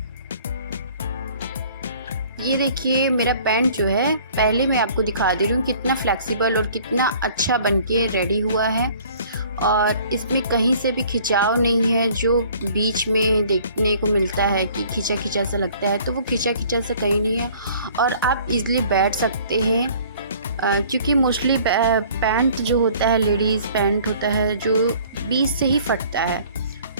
ये देखिए मेरा पैंट जो है, पहले मैं आपको दिखा दे रही हूँ कितना फ्लेक्सिबल और कितना अच्छा बनके रेडी हुआ है। और इसमें कहीं से भी खिंचाव नहीं है, जो बीच में देखने को मिलता है कि खिंचा खिंचा सा लगता है, तो वो खिंचा खिंचा सा कहीं नहीं है। और आप इजीली बैठ सकते हैं, क्योंकि मोस्टली पैंट जो होता है, लेडीज़ पैंट होता है जो बीच से ही फटता है।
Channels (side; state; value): both; inverted; correlation -0.53